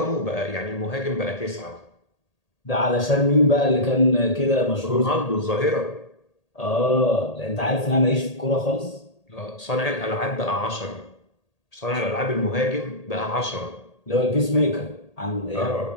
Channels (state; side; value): late; right; 1.8 ms